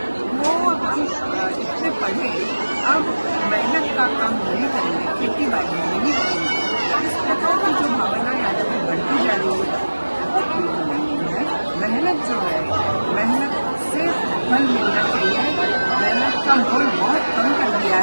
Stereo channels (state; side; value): inverted; both; correlation -1.00